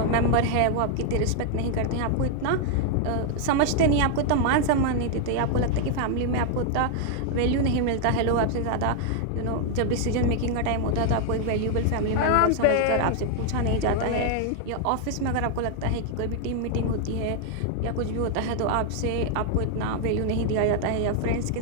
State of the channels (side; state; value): both; different; correlation 0.00